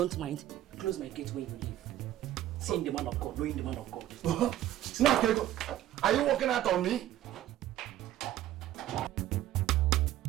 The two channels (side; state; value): left; quieter; 13.2 dB